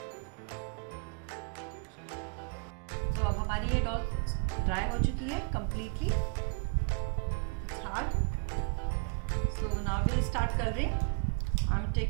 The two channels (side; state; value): left; quieter; 38.8 dB